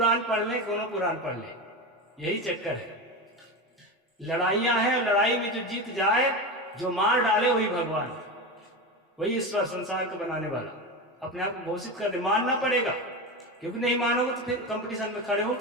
पढ़ ले, कोनो पुराण पढ़ ले, यही चक्कर है। लड़ाइयां हैं, लड़ाई में जो जीत जाए, जो मार डाले, वही भगवान, वही ईश्वर, संसार को बनाने वाला अपने आप को घोषित कर दे। मानना पड़ेगा, क्योंकि नहीं मानोगे तो फिर कंपटीशन में खड़े हो,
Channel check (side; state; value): both; normal; correlation 0.21